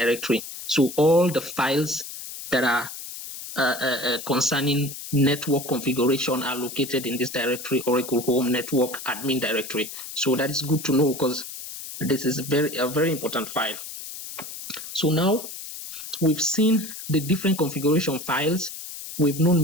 So all the files that are concerning network configuration are located in this directory, Oracle Home Network Admin Directory. So that is good to know, because this is a very important file. So now we've seen the different configuration files. We've known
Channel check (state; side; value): noise; left; hiss, 10 dB below the sound